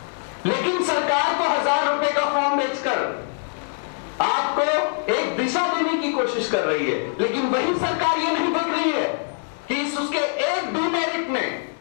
लेकिन सरकार को 1000 रुपए का फॉर्म बेचकर आपको एक दिशा देने की कोशिश कर रही है, लेकिन वही सरकार ये नहीं देख रही है कि इस उसके एक डिमेरिट में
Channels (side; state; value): right; silent; digital silence